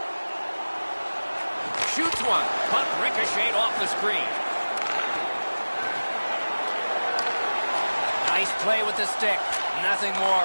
Shoots one. Puck ricocheted off the screen. Nice play with the stick. Nothing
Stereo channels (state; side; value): inverted; both; correlation -1.00